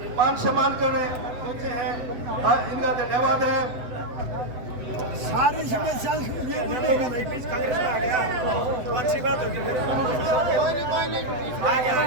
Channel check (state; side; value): late; left; 7.9 ms